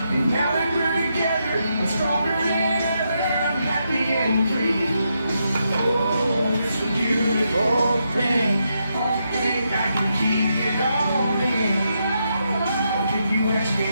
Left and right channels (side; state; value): both; inverted; correlation -0.82